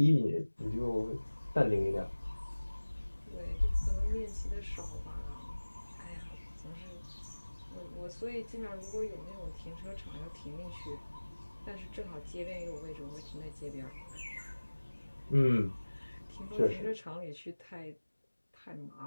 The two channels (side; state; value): both; inverted; correlation -1.00